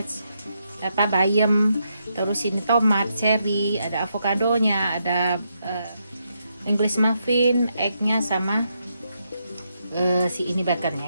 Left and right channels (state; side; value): inverted; both; correlation -0.80